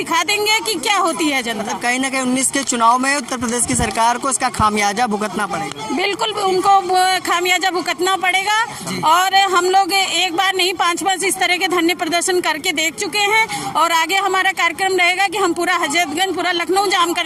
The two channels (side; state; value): both; identical; correlation 1.00